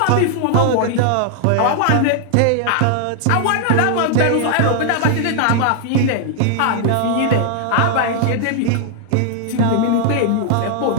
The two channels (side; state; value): both; different; correlation 0.00